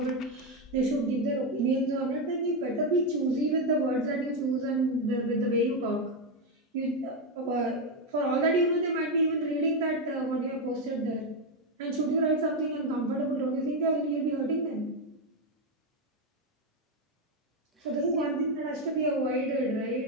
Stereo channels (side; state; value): both; normal; correlation 0.07